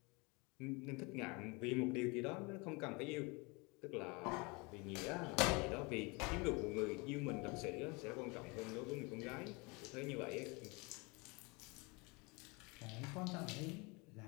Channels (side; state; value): right; quieter; 28.0 dB